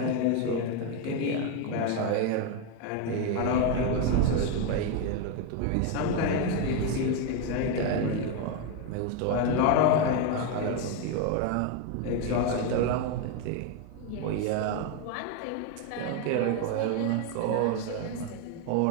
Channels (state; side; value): different; both; correlation 0.02